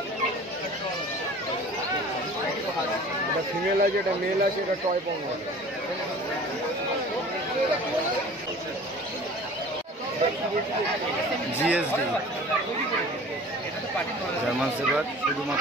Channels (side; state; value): both; normal; correlation 0.44